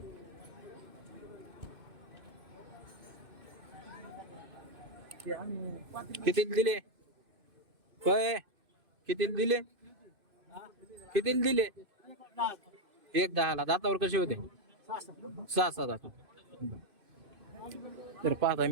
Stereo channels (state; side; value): late; left; 2.5 ms